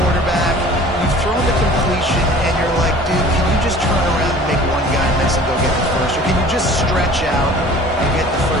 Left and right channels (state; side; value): normal; both; correlation 0.46